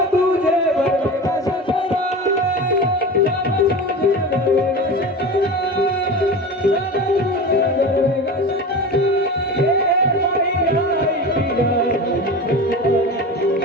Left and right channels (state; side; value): normal; both; correlation 0.30